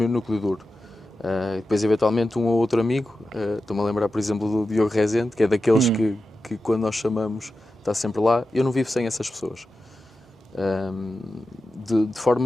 núcleo duro. Depois, eventualmente, um ou outro amigo. Estou-me a lembrar, por exemplo, do Diogo Rezende, que é daqueles que quando nós chamamos, está sempre lá. Eu não vivo sem essas pessoas. De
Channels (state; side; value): normal; both; correlation 0.92